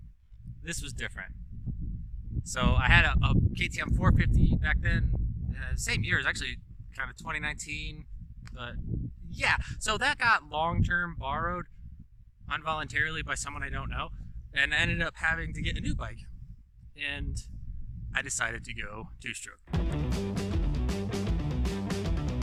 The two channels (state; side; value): identical; both; correlation 1.00